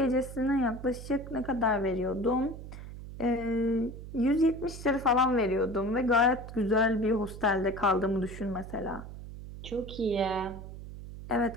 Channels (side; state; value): right; noise; hum, 12 dB below the sound